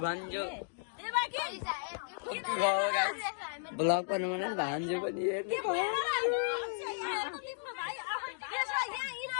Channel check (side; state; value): right; silent; digital silence